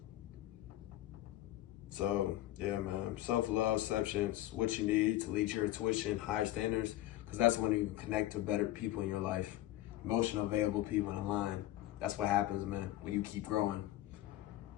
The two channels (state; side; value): quieter; right; 15.0 dB